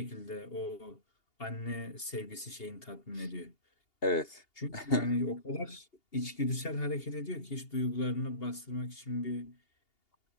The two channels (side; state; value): right; late; 2.8 ms